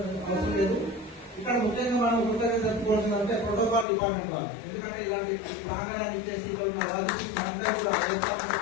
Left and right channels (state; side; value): drops out; right; at 3.9 s